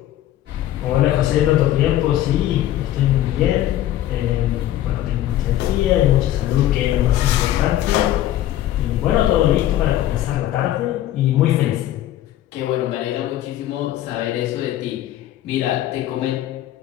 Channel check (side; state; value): right; quieter; 13.2 dB